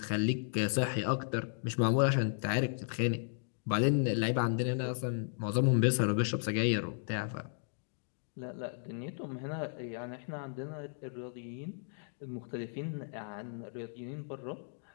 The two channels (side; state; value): right; silent; digital silence